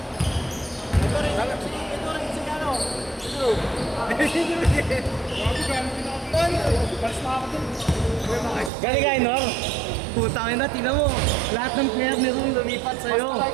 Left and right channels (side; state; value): left; drops out; at 8.7 s